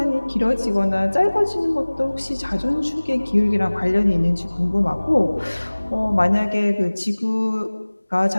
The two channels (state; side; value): inverted; both; correlation -1.00